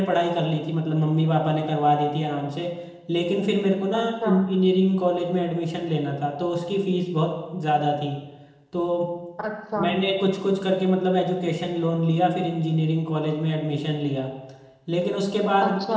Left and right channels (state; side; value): identical; both; correlation 1.00